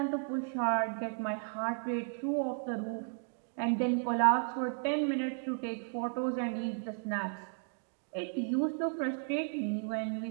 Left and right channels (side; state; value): left; silent; 55 dB below the other